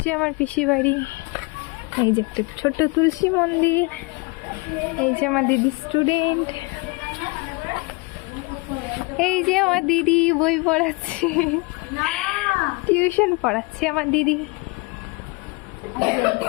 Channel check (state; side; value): quieter; right; 27.2 dB